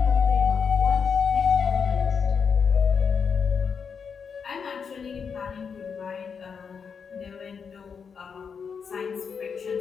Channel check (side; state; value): right; quieter; 6.3 dB